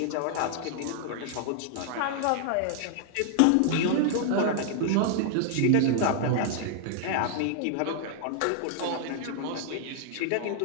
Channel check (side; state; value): both; different; correlation -0.01